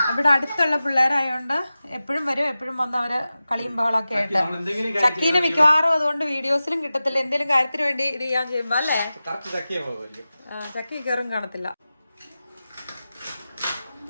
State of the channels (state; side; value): inverted; both; correlation -0.95